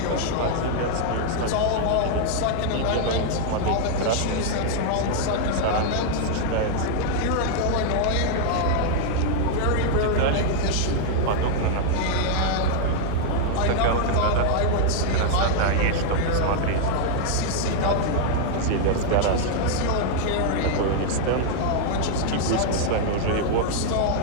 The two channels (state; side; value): different; both; correlation 0.00